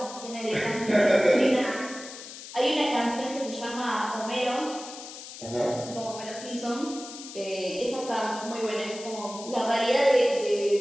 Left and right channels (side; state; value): left; noise; hiss, 13 dB below the sound